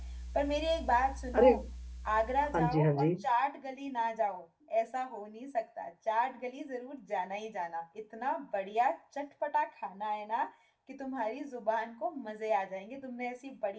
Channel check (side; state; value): both; identical; correlation 1.00